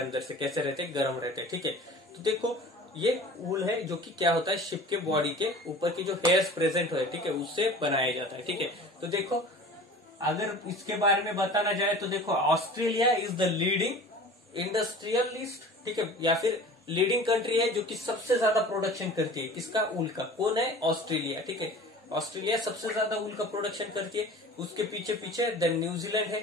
अंदर से। कैसे रहते हैं? गर्म रहते हैं। ठीक है, तो देखो ये वूल है जो कि क्या होता है? शिप के बॉडी के ऊपर की जो हेयर्स प्रेजेंट हो, ठीक है, उससे बनाया जाता है। ठीक है, तो देखो अगर इसके बारे में बताना जाए तो देखो, Australia is the leading industrialist, ठीक है, या फिर लीडिंग कंट्री है जो कि सबसे ज्यादा प्रोडक्शन करती है। किसका? वूल का। कौन है? ऑस्ट्रेलिया। ठीक है, ऑस्ट्रेलिया सबसे ज्यादा वूल का प्रोडक्शन करती है। उसके पीछे पीछे देन न्यूजीलैंड है।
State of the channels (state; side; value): normal; both; correlation 0.41